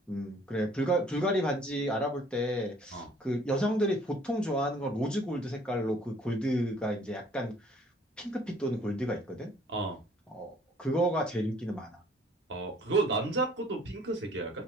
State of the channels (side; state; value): both; normal; correlation 0.57